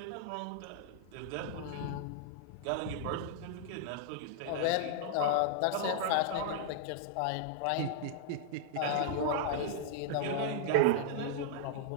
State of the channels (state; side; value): different; both; correlation -0.01